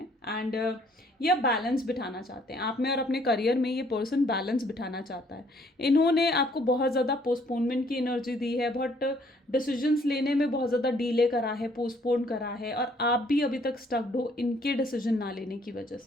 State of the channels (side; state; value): both; normal; correlation 0.63